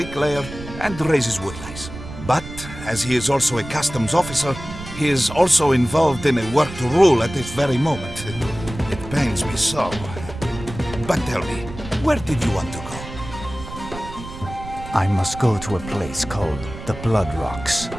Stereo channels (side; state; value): right; noise; rumble, 12 dB below the sound